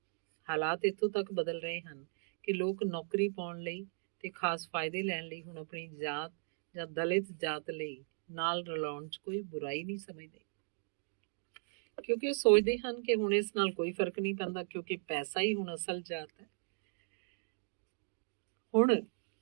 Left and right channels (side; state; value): left; silent; digital silence